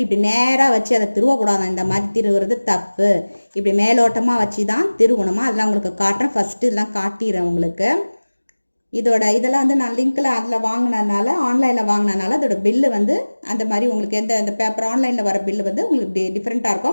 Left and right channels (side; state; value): both; inverted; correlation -1.00